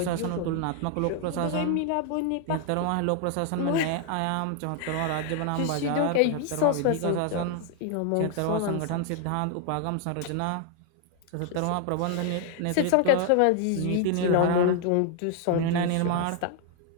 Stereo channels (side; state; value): both; different; correlation 0.00